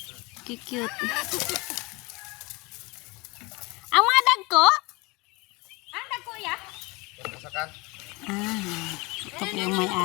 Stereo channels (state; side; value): quieter; right; 25.2 dB